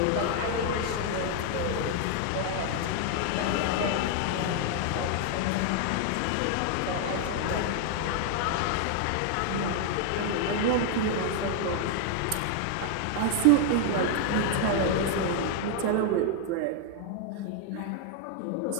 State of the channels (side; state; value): both; different; correlation 0.00